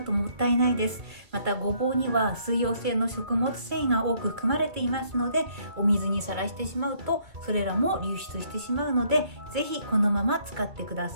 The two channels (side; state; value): left; late; 2.4 ms